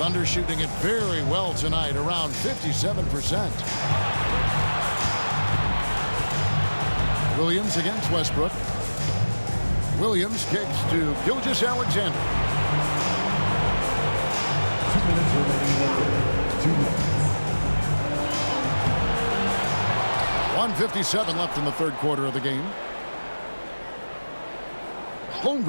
shooting it very well tonight, around 57%. Williams against Westbrook. Williams kicks to Gilgeous-Alexander. 2 minutes remaining. 2 minutes. 1:57 left in the third quarter of the game.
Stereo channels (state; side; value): inverted; both; correlation -1.00